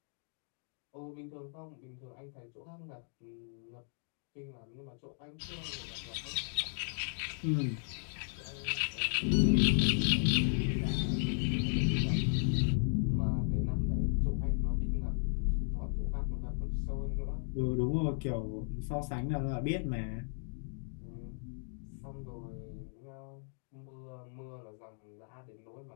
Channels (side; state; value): right; silent; digital silence